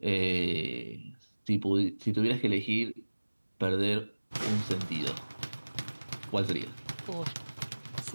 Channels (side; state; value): both; inverted; correlation -1.00